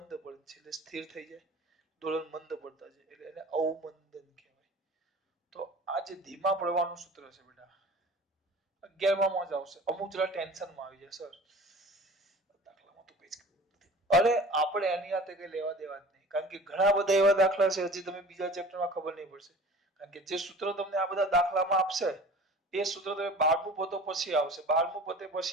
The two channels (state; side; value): normal; both; correlation 0.42